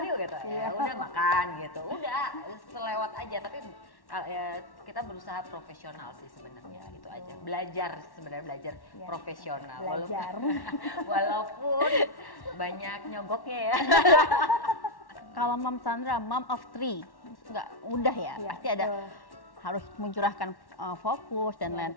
yuk gitu. Ya udah makan gitu, udah selewat aja. Tapi kita berusaha profesional sih sebenarnya, itu aja. Belajar profesional, walaupun banyak nyogoknya ya. Kalau Mam Sandra, mom of 3, nggak mudah ya, pasti ada harus mencurahkan fokus dan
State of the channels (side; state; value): right; late; 1.1 ms